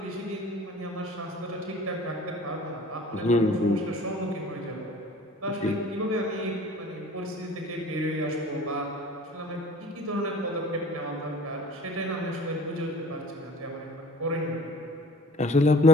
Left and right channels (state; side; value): normal; both; correlation 0.46